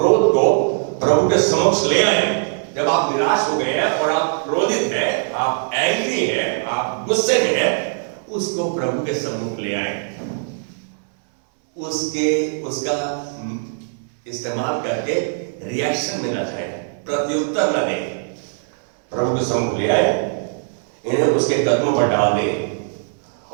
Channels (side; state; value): left; silent; 64 dB below the other